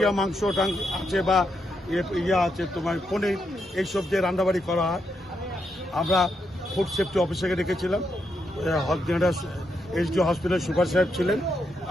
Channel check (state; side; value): normal; both; correlation 0.81